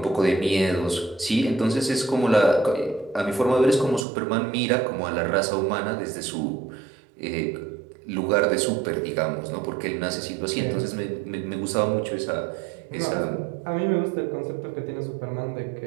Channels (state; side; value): drops out; left; at 4.0 s